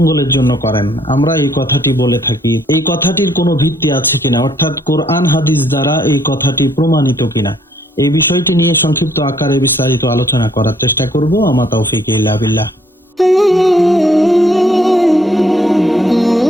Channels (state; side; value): normal; both; correlation 0.66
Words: জন্য করেন, আমরা এই কথাটি বলে থাকি। এই কথাটির কোনো ভিত্তি আছে কিনা, অর্থাৎ কোরআন হাদিস দ্বারা এই কথাটি প্রমাণিত কিনা, এই বিষয়টি নিয়ে সংক্ষিপ্ত আকারে বিস্তারিত আলোচনা করার চেষ্টা করব। আমা তাওফীক ইল্লা বিল্লাহ।